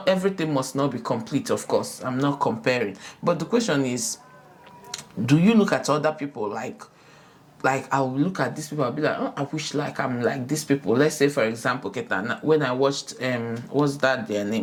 everything must not be complete, of course. I'm not comparing. But the question is, do you look at other people like I'll look at these people, I'll be like, oh, I wish like I'm like these people. Let's say, for example, Keta, when I watched what's that their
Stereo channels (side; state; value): both; identical; correlation 1.00